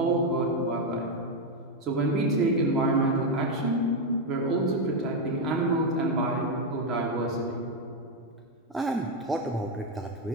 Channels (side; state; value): both; normal; correlation 0.05